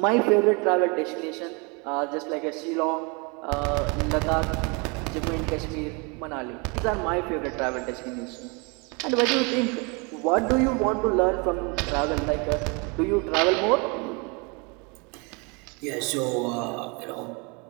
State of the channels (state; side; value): quieter; left; 31.0 dB